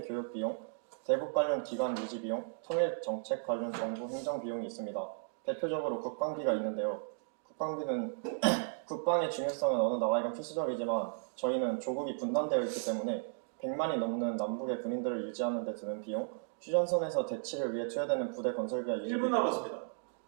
교육 비용, 대북 관련 기관 유지 비용, 통일 정책 관련 정부 행정 비용이 있습니다. 대표적으로 국방비가 있는데요. 국방비는 국방의 중요성은 어느 나라에건 필수적이지만 저희는 조국이 분단되어 있기 때문에 100만이 넘는 남북의 군인들을 유지하는 데 드는 비용, 휴전선에서 대치를 위해 투여되는 부대 건설비와 유지 1분 남았습니다.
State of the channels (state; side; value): silent; left; digital silence